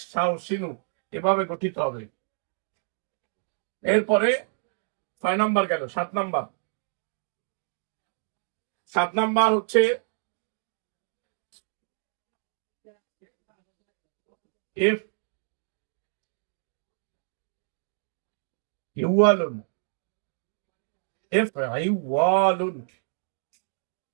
শাওসিনু এভাবে গঠিত হবে। এরপরে 6 নম্বর গেল, 7 নম্বর। 7 নম্বর হচ্ছে এফ ইওয়ালুন, এফ ইওয়ালুন,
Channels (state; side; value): silent; left; digital silence